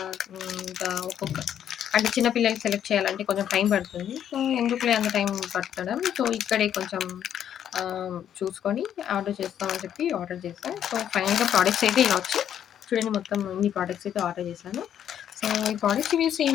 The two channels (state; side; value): quieter; right; 9.8 dB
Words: ఇంకా అంటే చిన్న పిల్లలకి సెలెక్ట్ చేయాలంటే కొంచెం టైం పడుతుంది. సో, ఎందుకులే అంత టైం పట్టడం. సో, ఇక్కడే కొంచెం చూసుకొని ఆర్డర్ చేస్తామని చెప్పి ఆర్డర్ చేశా. సో, ఫైనల్‌గా ప్రొడక్ట్స్ అయితే ఇలా వచ్చాయి. చూడండి, మొత్తం ఇన్ని ప్రొడక్ట్స్ అయితే ఆర్డర్ చేశాను. సో, ఈ ప్రొడక్ట్స్ రివ్యూస్